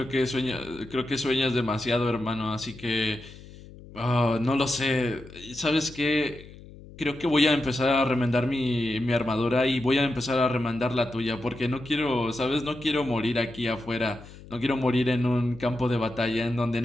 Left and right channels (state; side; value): noise; left; hum, 18 dB below the sound